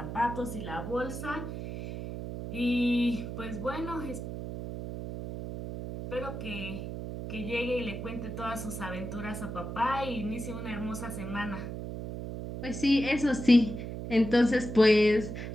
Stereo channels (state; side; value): noise; right; hum, 7 dB below the sound